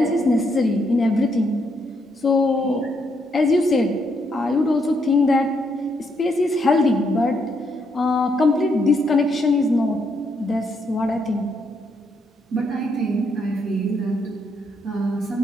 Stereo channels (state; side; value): normal; both; correlation 0.76